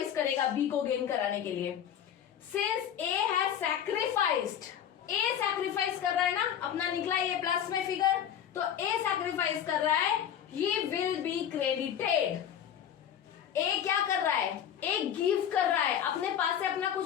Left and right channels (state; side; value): quieter; right; 9.4 dB